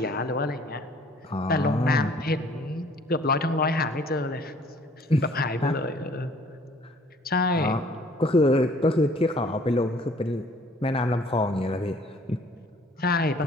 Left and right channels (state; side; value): normal; both; correlation 0.57